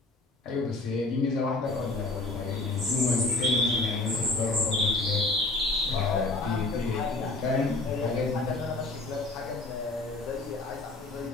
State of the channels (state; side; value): quieter; right; 3.2 dB